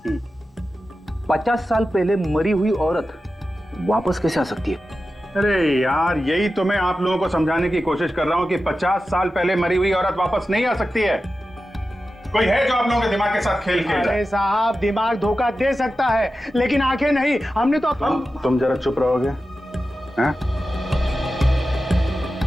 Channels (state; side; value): normal; both; correlation 0.93